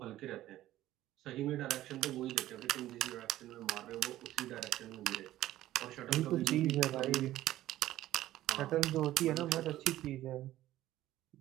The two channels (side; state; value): left; quieter; 14.5 dB